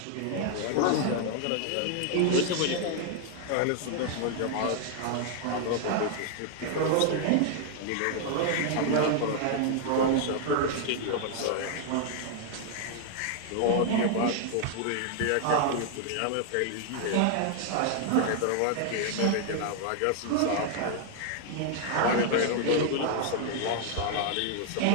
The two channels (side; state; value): both; different; correlation 0.00